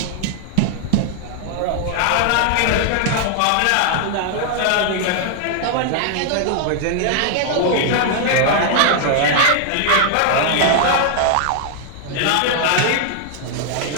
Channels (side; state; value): both; different; correlation 0.00